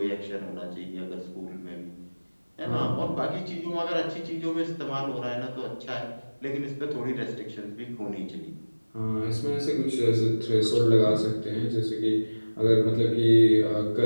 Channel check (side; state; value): both; inverted; correlation -1.00